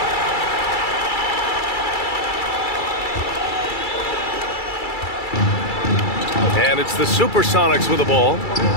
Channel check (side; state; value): right; late; 2.3 ms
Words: And it's the Supersonics with the ball.